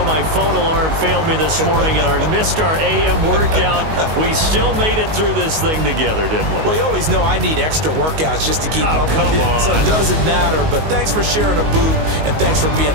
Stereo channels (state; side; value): late; left; 19 ms